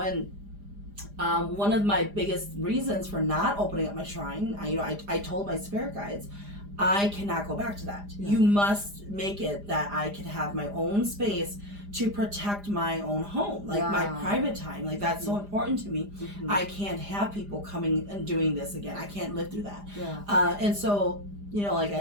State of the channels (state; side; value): late; left; 4.9 ms